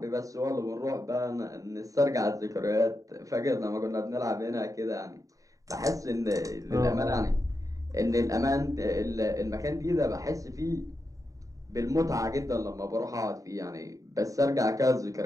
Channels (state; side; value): late; left; 0.16 ms